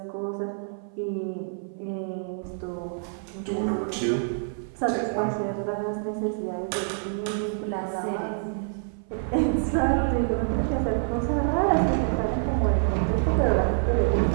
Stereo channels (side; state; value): left; silent; 56 dB below the other